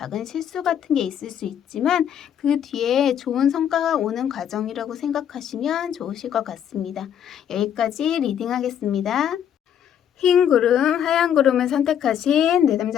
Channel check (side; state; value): right; quieter; 9.3 dB